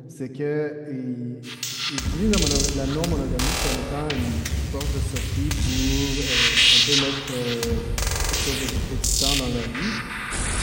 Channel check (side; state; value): both; identical; correlation 1.00